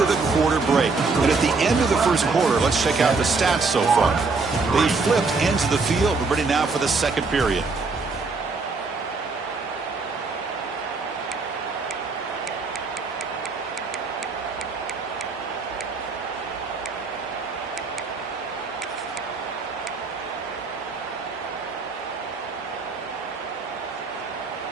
the quarter break. And at the end of the first quarter, let's check out the stats so far. They flipped ends of the field. We're ready now for the second period.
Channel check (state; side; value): quieter; left; 4.2 dB